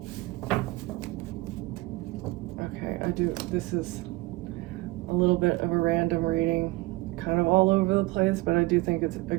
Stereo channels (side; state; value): left; quieter; 21.3 dB